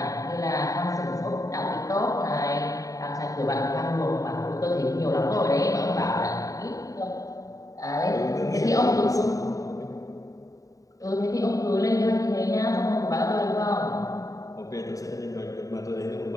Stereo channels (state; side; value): late; right; 0.16 ms